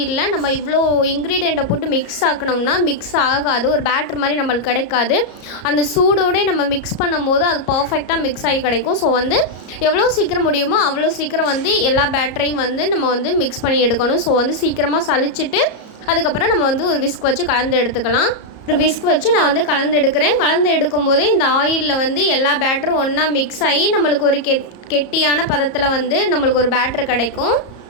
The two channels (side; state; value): right; late; 34 ms